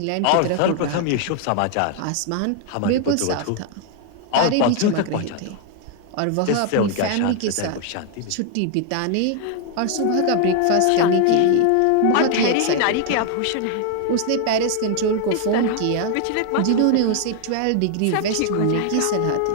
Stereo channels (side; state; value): both; different; correlation 0.00